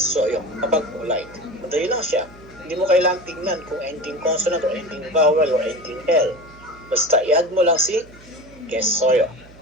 yung kapag polite. Madali lang siya. Hindi mo kailangang tingnan kung ending consonant or ending vowel or ending L. Basta i-add mo lang si kesoyo.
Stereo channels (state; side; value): noise; right; hum, 22 dB below the sound